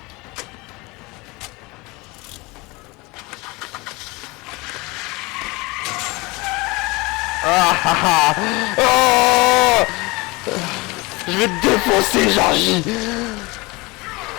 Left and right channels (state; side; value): quieter; right; 24.3 dB